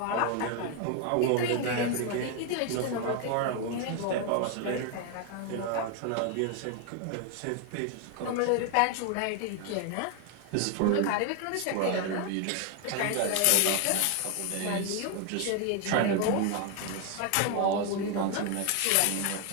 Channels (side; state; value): both; different; correlation 0.01